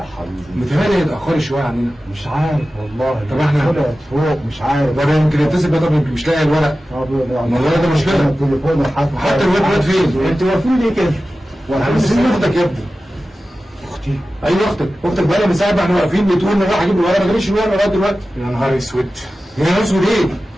حبيبي. متهيألي اتاخروا شويه عننا. مش عارف والله. طب احنا طلعت فوق مش عارف. طب يمكن يتصل بقى، طب يمكن مش لاقي الورق. والله ده مشكله. التليفون حتى الواد فين؟ انت واقفين ليه كده؟ بس اختك يا ابني. اختي؟ ايوه اختك بقى لها من ساعه ما احنا واقفين بتقول انا رايح اجيب الورق، ما جابش الورق لغايه دلوقتي. يا نهار اسود. يا نهار اسود ايه؟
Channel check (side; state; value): both; normal; correlation 0.95